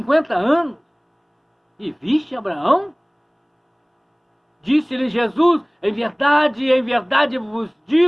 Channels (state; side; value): identical; both; correlation 1.00